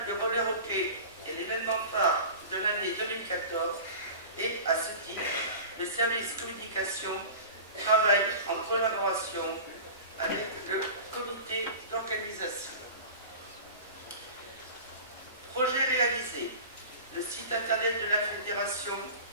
de roller hockey est l'événement phare de l'année 2014 et, à ce titre, le service communication travaille en collaboration avec le comité d'organisation. Projet réalisé. Le site internet de la fédération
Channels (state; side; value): inverted; both; correlation -0.35